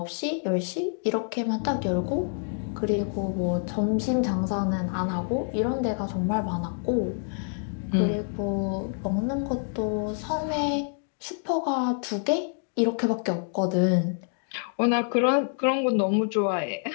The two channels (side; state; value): right; silent; 60 dB below the other